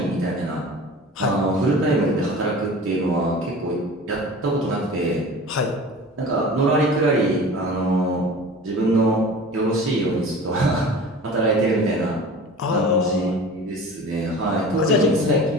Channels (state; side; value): normal; both; correlation 0.39